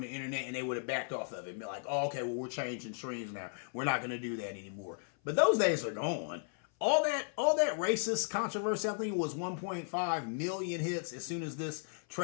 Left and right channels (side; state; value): right; silent; 54 dB below the other